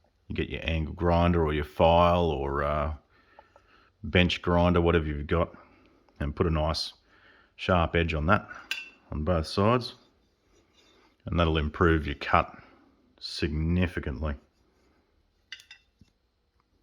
you get your angle grinder or your file or bench grinder, whatever you've got, and put a nice sharp edge on that on both sides, and that'll improve your cut significantly.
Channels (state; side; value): identical; both; correlation 1.00